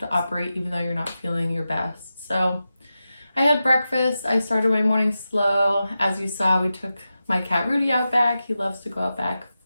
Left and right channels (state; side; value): inverted; both; correlation -0.92